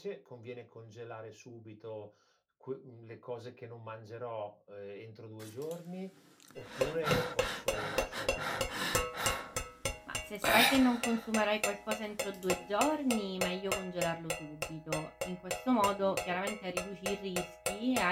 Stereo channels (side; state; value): both; identical; correlation 1.00